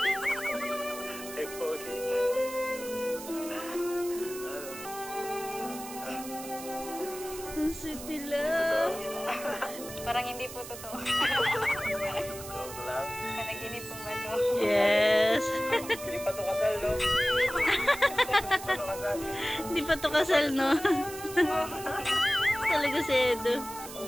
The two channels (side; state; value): right; noise; hiss, 12 dB below the sound